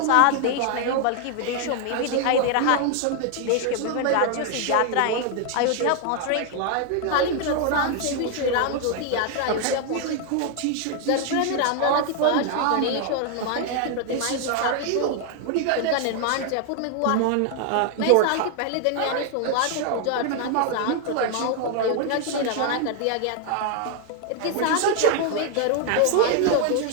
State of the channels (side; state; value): both; different; correlation 0.00